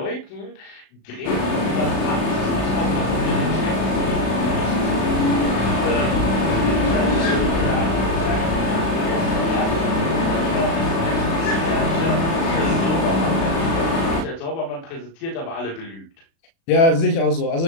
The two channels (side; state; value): right; late; 36 ms